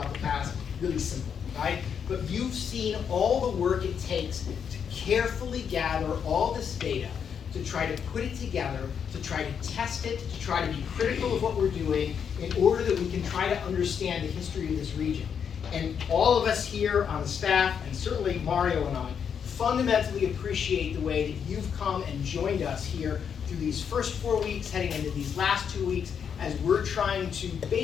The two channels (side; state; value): right; quieter; 7.4 dB